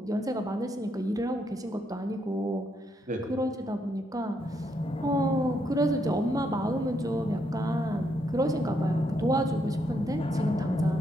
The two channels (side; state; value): both; normal; correlation 0.76